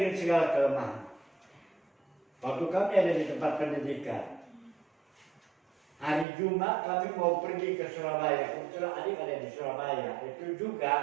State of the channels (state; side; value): drops out; left; at 6.2 s